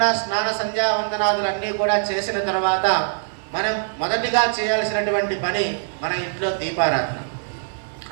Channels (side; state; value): left; silent; 56 dB below the other